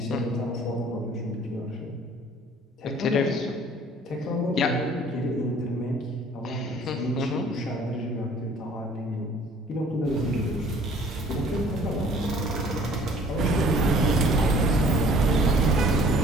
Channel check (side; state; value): both; normal; correlation 0.53